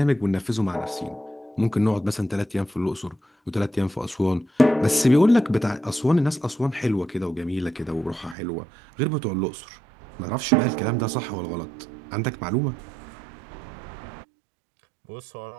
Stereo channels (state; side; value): drops out; left; at 8.3 s